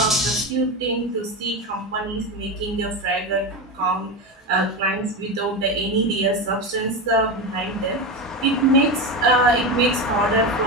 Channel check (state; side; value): normal; both; correlation 0.17